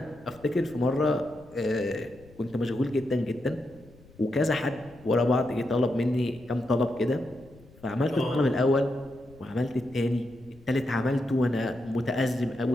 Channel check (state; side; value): noise; left; rumble, 24 dB below the sound